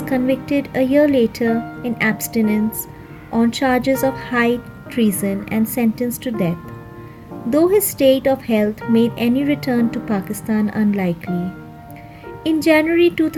convicted a year later in abstinence on charges of high treason and sentenced to death, though his state of health made any return to Pakistan unlikely. In January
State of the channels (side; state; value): both; identical; correlation 1.00